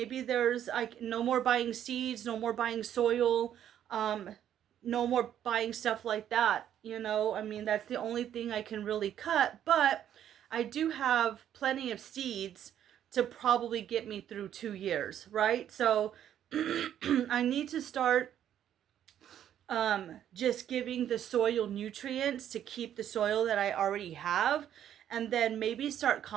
there's like no more buying seeds, no more buying soil, um, no more buying stuff like that. You know, I mean, that's the only thing I can really cut, but I do have plenty of seeds to probably get me through 2 years, right? So I need to start just giving the soil nutrients to keep the soil that I already have, and then maybe start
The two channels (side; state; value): left; quieter; 10.4 dB